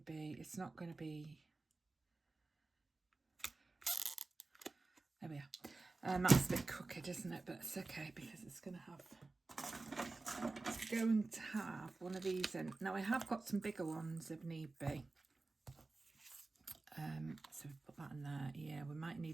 be, there we are. That's a bit crooked, isn't it? But it's okay because it's going to have one of these in. Now I have got some bigger ones if need be. So we put that in there. Yeah, we might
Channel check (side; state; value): left; quieter; 3.4 dB